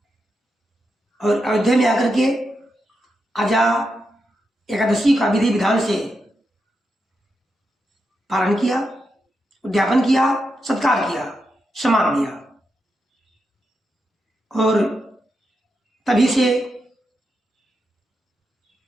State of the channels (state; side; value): normal; both; correlation 0.86